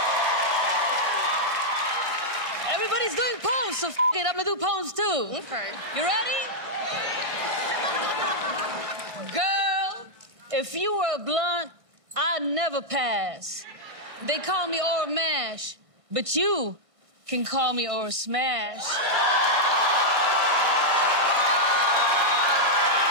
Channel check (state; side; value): late; left; 1.6 ms